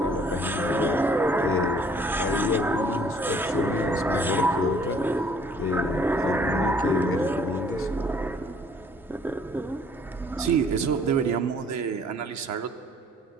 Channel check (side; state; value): both; normal; correlation 0.59